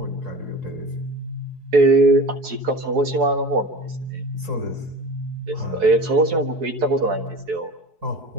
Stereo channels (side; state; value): left; late; 4.7 ms